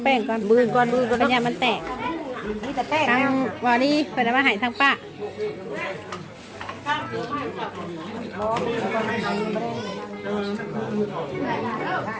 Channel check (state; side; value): identical; both; correlation 1.00